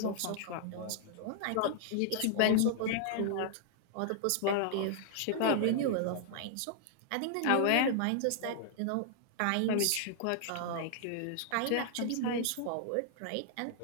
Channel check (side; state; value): both; different; correlation -0.01